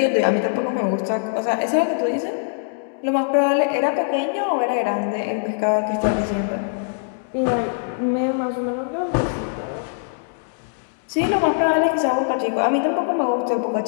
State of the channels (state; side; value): silent; right; digital silence